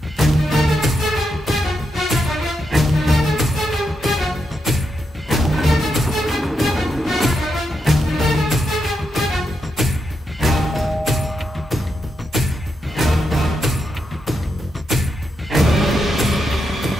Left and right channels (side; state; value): both; normal; correlation 0.83